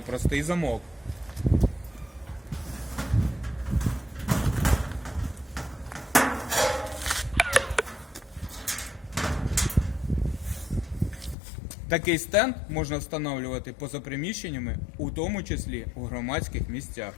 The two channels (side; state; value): right; drops out; at 11.4 s